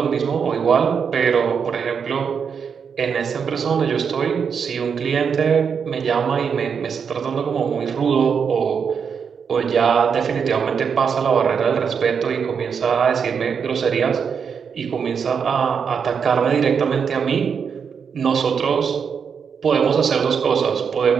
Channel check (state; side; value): quieter; left; 6.6 dB